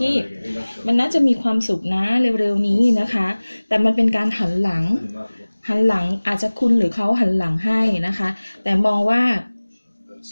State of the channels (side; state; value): both; inverted; correlation -1.00